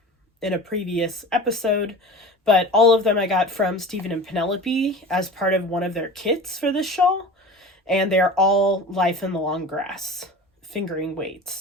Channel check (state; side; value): normal; both; correlation 0.36